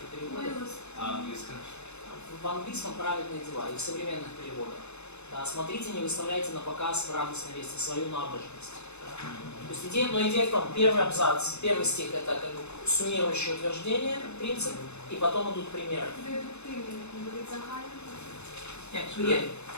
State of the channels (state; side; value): late; right; 0.81 ms